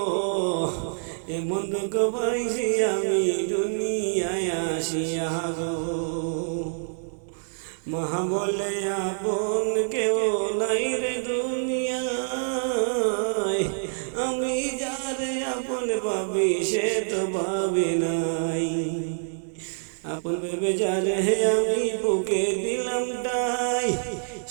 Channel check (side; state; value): left; silent; digital silence